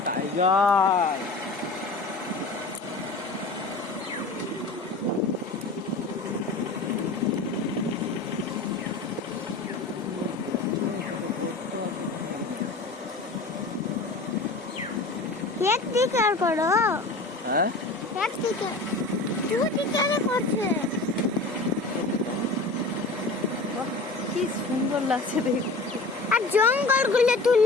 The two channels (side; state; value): right; quieter; 3.3 dB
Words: টাইগার এক দিকে আর করো। হ্যাঁ এক দিকে দুদিকে করছে। কি সুন্দর লাগছে দেখতে। আর জঙ্গলগুলো